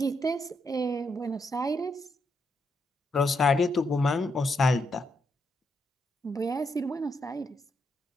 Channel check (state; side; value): normal; both; correlation 0.80